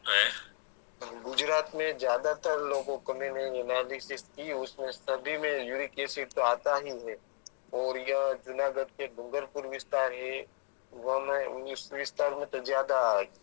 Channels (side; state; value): right; silent; digital silence